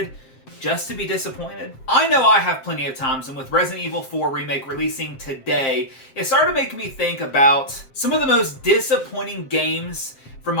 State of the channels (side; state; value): right; late; 7.6 ms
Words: just to be disappointed? I know I have plenty of times, and with Resident Evil 4 Remake releasing today, it started to make me think about some of the most disappointing games from